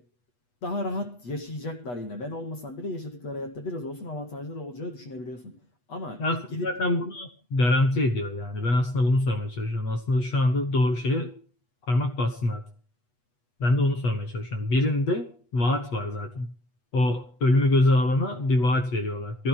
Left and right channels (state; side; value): late; right; 8.2 ms